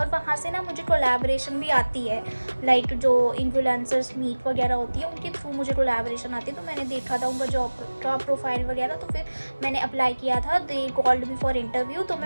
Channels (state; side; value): inverted; both; correlation -1.00